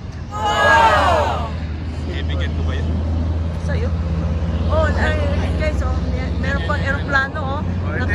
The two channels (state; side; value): identical; both; correlation 1.00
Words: Wow! Kaibigan ko ba yun? Sa'yo? Oh, guys, oh, meron pang aeroplano, oh.